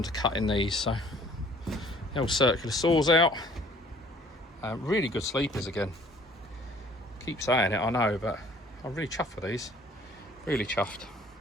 to cutting these. So the old circular saw's out. Really good sleepers again. Keep saying it, I know, but I'm really chuffed with these. Really chuffed.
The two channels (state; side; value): normal; both; correlation 0.56